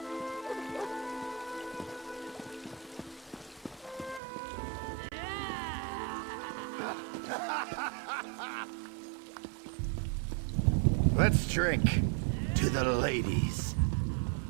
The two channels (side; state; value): left; drops out; at 4.2 s